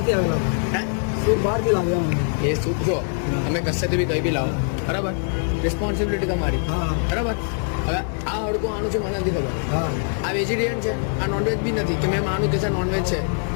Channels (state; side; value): silent; right; 59 dB below the other